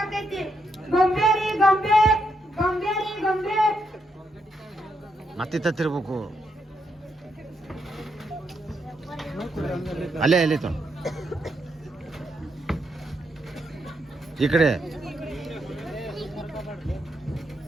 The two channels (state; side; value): normal; both; correlation 0.80